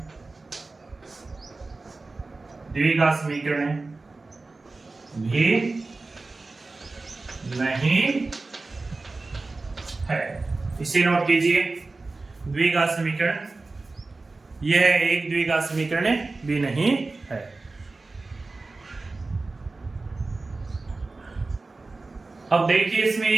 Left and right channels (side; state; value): left; quieter; 3.5 dB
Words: भी नहीं है। इसे नोट कीजिए, द्विघात समीकरण, यह एक द्विघात समीकरण भी नहीं है। अब देखिए इसमें